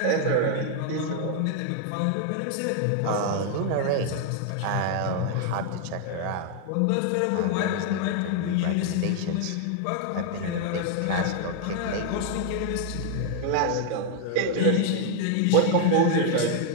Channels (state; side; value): different; both; correlation 0.00